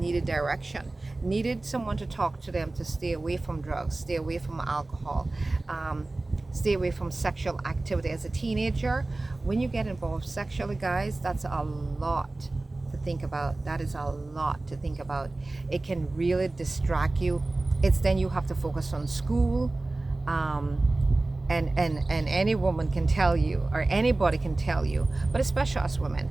direction, needed someone to talk to them to stay away from drugs, stay away from alcohol, stay away from sexual activity. As a teenager, when you get involved sexually, guys, that's a lot to think about. That is a lot to think about. It can really distract you. It's then you have to focus on school. And any woman can tell you, or anybody can tell you, but especially us women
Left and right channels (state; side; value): quieter; left; 3.0 dB